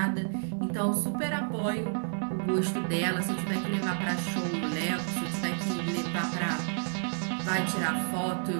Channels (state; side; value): silent; left; digital silence